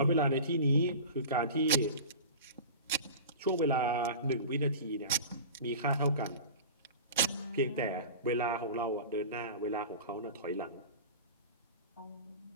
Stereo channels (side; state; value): both; inverted; correlation -0.34